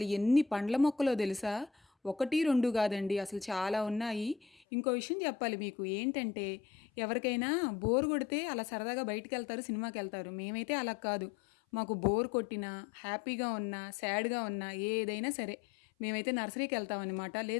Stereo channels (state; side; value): drops out; right; at 4.5 s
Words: ఎన్ని పండ్ల మొక్కలో తెలుసా? 1, 2 కాదండి, అసలు చాలా ఉన్నాయి. ఇంకో విషయం చెప్పాలి మీకు ఏంటంటే, ఎవరికైనా బోర్ కొడితే అలా సరదాగా బయటికెళ్తారు, సినిమాకెళ్తారు. మేమైతే అలా కాదు. మాకు బోర్ కొట్టినా, హ్యాపీగా ఉన్నా, సాడ్‌గా ఉన్నా ఏదైనా సరే మేమైతే నర్సరీకెళ్తామనమాట.